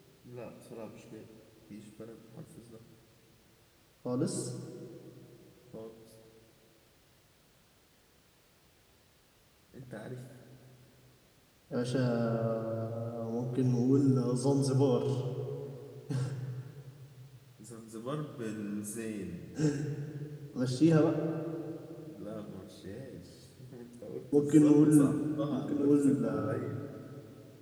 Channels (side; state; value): both; identical; correlation 1.00